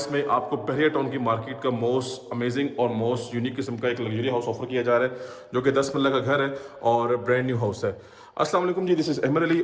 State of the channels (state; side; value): identical; both; correlation 1.00